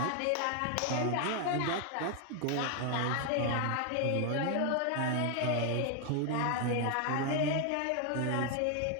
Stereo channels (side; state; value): both; different; correlation 0.01